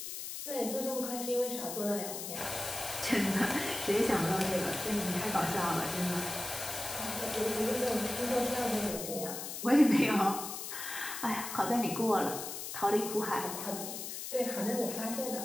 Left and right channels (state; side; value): noise; left; hiss, 7 dB below the sound